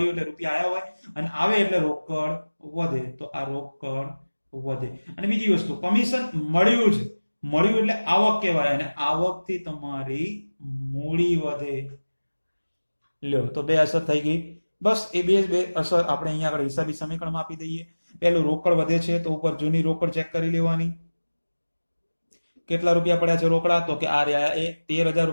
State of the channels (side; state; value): both; inverted; correlation -1.00